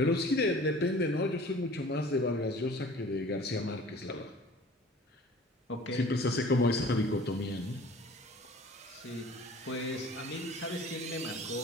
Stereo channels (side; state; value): both; normal; correlation 0.47